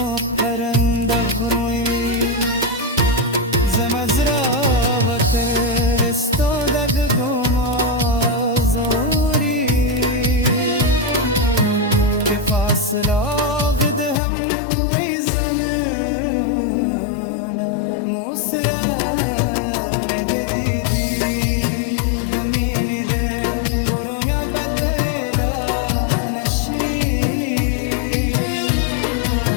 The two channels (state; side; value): drops out; right; at 14.2 s